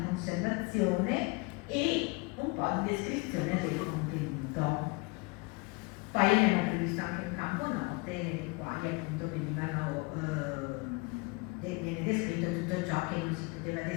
conservazione e un po' di descrizione del contenuto. Poi abbiamo previsto anche un campo note nei quali appunto viene descritto tutto ciò che non si poteva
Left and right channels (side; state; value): right; quieter; 28.1 dB